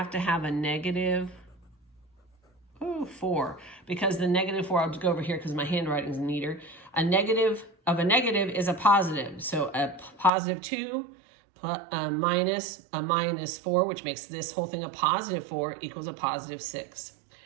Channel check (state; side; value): drops out; left; at 10.3 s